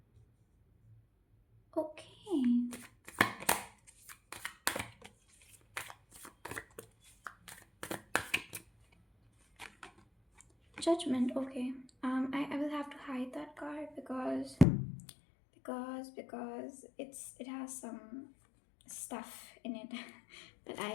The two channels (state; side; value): drops out; right; at 14.7 s